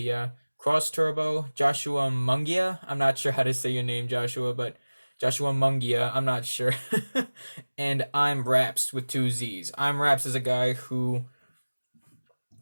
Cross Turbo, Joshua Mungia. I'm not sure how to say your name, Joshua, but Joshua Mungia, I'm not sure. And I'm Rapzz with 2 Z's. I'm Rapzz is a guy who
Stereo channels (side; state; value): both; inverted; correlation -1.00